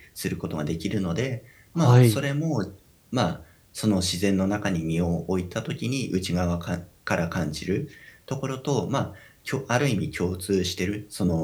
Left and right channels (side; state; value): both; identical; correlation 1.00